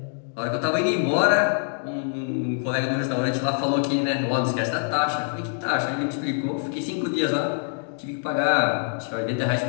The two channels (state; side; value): silent; right; digital silence